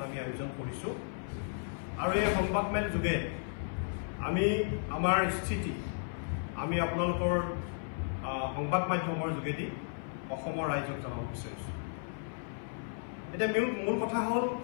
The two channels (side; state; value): right; silent; 55 dB below the other